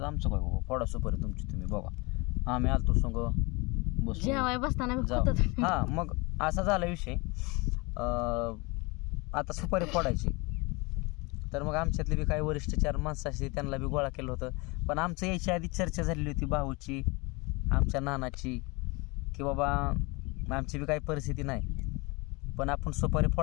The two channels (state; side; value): quieter; right; 26.7 dB